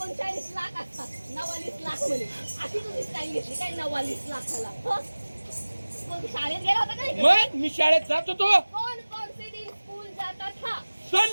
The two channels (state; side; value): inverted; both; correlation -1.00